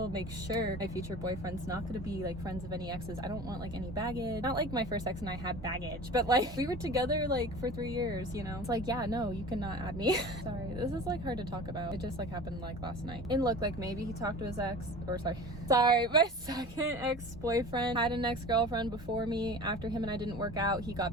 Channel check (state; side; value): normal; both; correlation 0.38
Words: make sure my future boyfriend's not going to be like friends of any exes. I don't want like any baggage. Not like my first ex and I had baggage, but like we were together like for 3 years, you know? It's like, yeah, no, you cannot add me. Sorry, this is like hard to talk about. It just like happened like last night. And look, like maybe he talked to his ex, or sorry, my second ex-boyfriend had an ex-girlfriend before me. After him and I didn't work out, he got